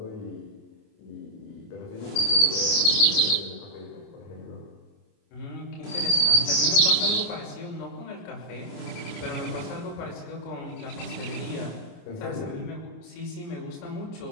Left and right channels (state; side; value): late; right; 28 ms